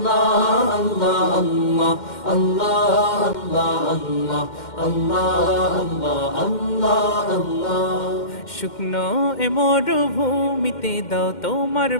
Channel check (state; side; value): late; right; 2.1 ms